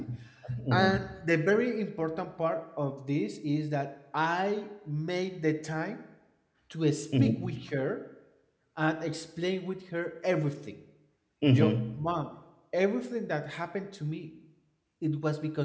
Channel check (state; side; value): identical; both; correlation 1.00